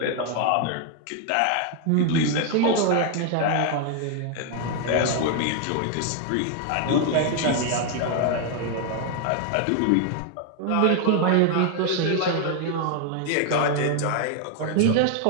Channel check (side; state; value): both; different; correlation 0.01